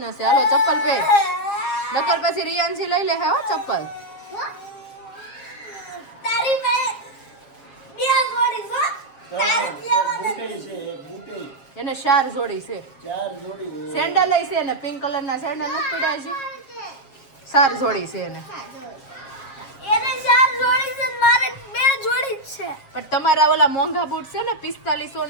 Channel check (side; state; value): right; late; 7.4 ms